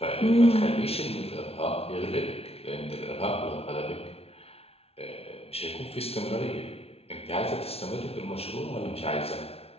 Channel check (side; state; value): right; late; 0.29 ms